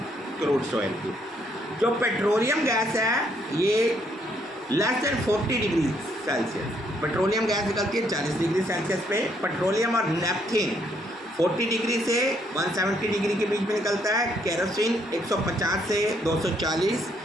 क्रूड ऑयल की। जो पेट्रोलियम गैस है ये less than 40 degree Celsius, petroleum gas निकलती है 40 डिग्री सेल्सियस पे। पेट्रोलियम और नेपथीन 40 डिग्री से 170 डिग्री के बीच में निकलता है। केरोसिन 150 से 240,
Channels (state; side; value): normal; both; correlation 0.71